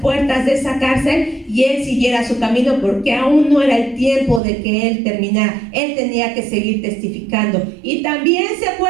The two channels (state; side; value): drops out; left; at 4.4 s